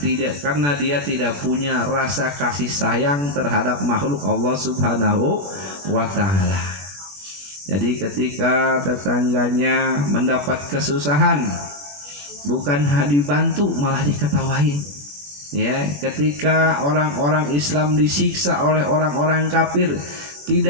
dia tidak punya rasa kasih sayang terhadap makhluk Allah Subhanahu wa ta'ala. Jadi ketika tetangganya mendapat kesusahan, bukan dibantu malah diketawain. Ya, ketika orang-orang Islam disiksa oleh orang-orang kafir,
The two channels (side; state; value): left; late; 21 ms